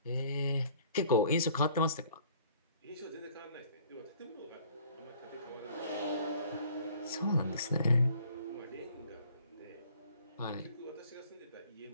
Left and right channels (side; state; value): both; inverted; correlation -0.56